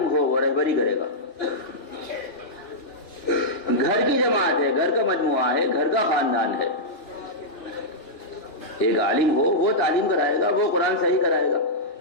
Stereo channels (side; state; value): right; late; 2.7 ms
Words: ہو، وہ رہبری کرے گا۔ گھر کی جماعت ہے، گھر کا مجموعہ ہے، گھر کا خاندان ہے، ایک عالم ہو، وہ تعلیم کرائے گا، وہ قرآن صحیح کرائے گا،